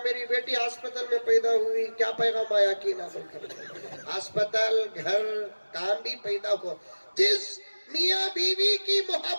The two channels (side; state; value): both; inverted; correlation -1.00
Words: میری بیٹی ہسپتال میں پیدا ہوئی, کیا پیغام آیا کی نہ بول کر ہسپتال گھر کام بھی پیدا ہو. جس میاں بیوی کی